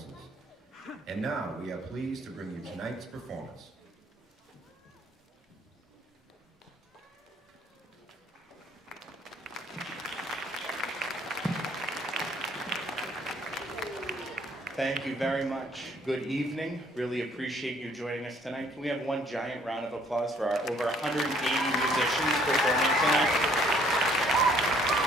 And now, we are pleased to bring you tonight's performance. Thank you very much. Good evening. Really appreciate you joining us tonight. Can we have one giant round of applause for our over 180 musicians performing tonight?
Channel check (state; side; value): normal; both; correlation 0.61